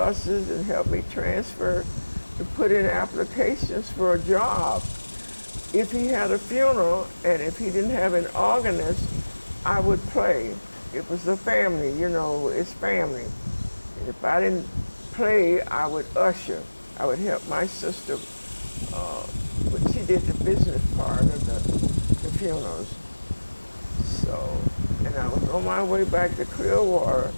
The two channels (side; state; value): both; inverted; correlation -1.00